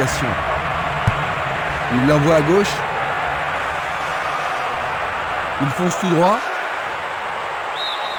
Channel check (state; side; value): identical; both; correlation 1.00